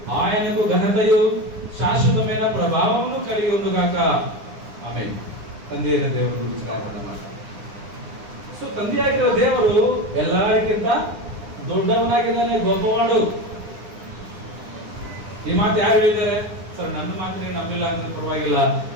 ఆయనకు ఘనతయు శాశ్వతమైన ప్రభావమును కలిగి ఉండుగాక. ఆమేన్. ತಂದೆಯ ದೇವರು ಗುరించి ಮಾತಾಡೋಣ. ಸೊ ತಂದೆಯಾಗಿರೋ ದೇವರು ಎಲ್ಲರಿಗಿಂತ ದೊಡ್ಡವನಾಗಿದ್ದಾನೆ, ಗೊಬ್ಬವಾಡು. ಈ ಮಾತು ಯಾರು ಹೇಳಿದ್ದಾರೆ? ಸರ್ ನನ್ನ ಮಾತು ನೀವು ನಂಬಿಲ್ಲ ಅಂದ್ರೆ ಪರವಾಗಿಲ್ಲ,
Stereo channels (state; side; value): late; left; 9.9 ms